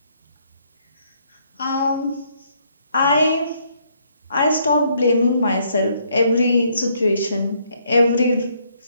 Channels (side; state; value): both; inverted; correlation -0.69